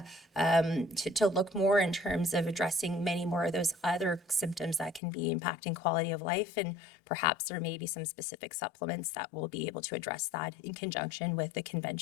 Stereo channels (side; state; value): right; drops out; at 5.0 s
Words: to look more in terms of addressing many more of those other symptoms that can be impacting quality of life. And perhaps there may be some specific supplements that will be able to address that in conjunction with the